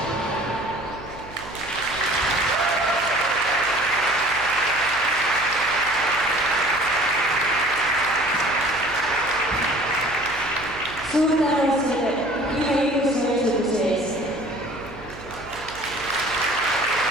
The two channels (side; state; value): right; noise; hum, 18 dB below the sound